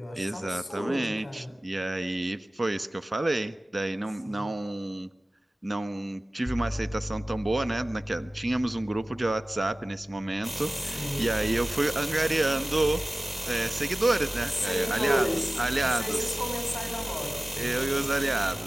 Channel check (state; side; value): normal; both; correlation 0.97